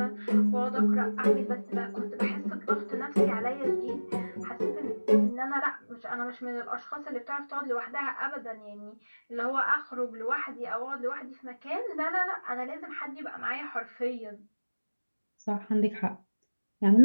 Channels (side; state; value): both; inverted; correlation -1.00